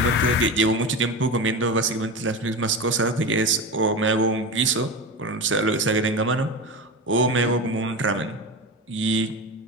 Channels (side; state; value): both; normal; correlation 0.24